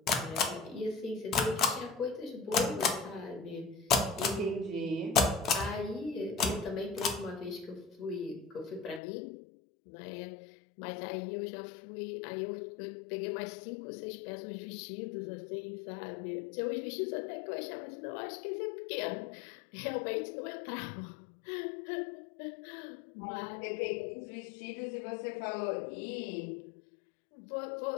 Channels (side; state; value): right; drops out; at 9.0 s